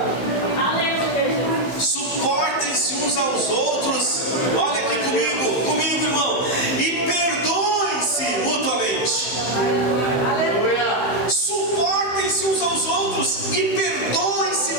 Suportem-se uns aos outros. Olha aqui comigo, irmão. E perdoem-se mutuamente. Suportem-se uns aos outros e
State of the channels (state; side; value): late; right; 15 ms